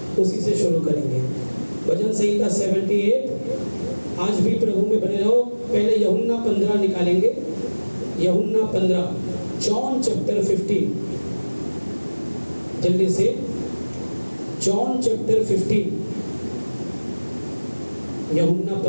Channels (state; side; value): inverted; both; correlation -1.00